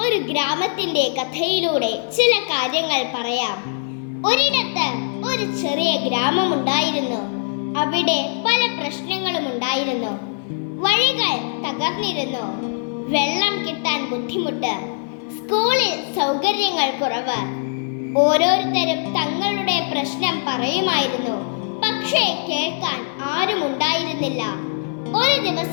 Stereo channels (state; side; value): silent; right; 57 dB below the other